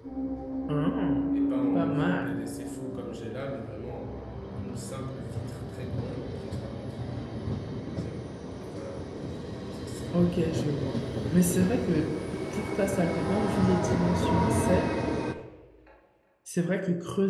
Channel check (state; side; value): identical; both; correlation 1.00